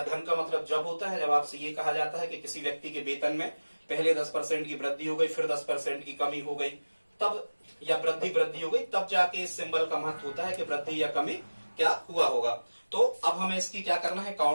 धन का मतलब जब होता है जब आपसे ये कहा जाता है कि किसी व्यक्ति के वेतन में पहले 10% की वृद्धि हो गई, फिर 10% की कमी हो गई, तब या वृद्धि हो गई, तब जाके इस सिंबल का महत्व होता है कि वृद्धि या कमी क्या हुआ होगा। तो अब हमें इसकी क्या करना है,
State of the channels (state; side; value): inverted; both; correlation -1.00